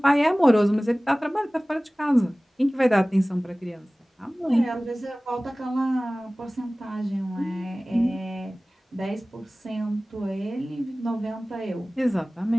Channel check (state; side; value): normal; both; correlation 0.98